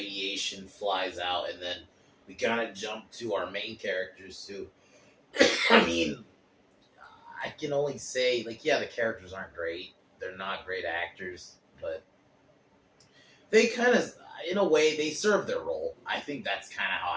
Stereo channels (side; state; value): both; identical; correlation 1.00